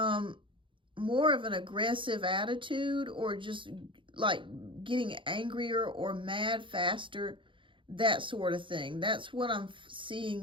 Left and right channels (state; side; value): late; left; 0.24 ms